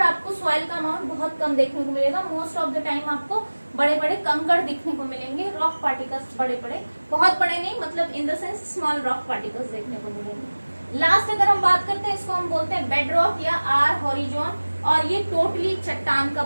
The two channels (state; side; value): inverted; both; correlation -1.00